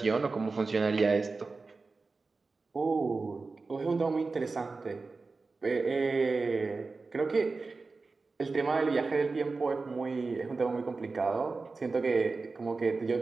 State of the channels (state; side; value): quieter; left; 4.0 dB